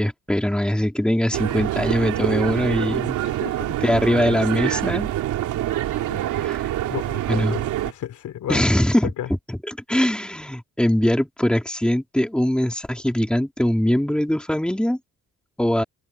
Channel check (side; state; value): both; normal; correlation 0.77